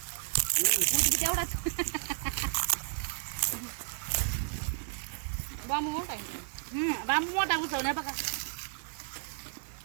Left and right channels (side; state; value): left; silent; 56 dB below the other